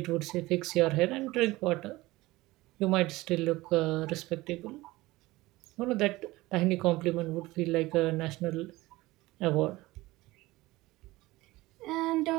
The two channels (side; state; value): left; quieter; 19.4 dB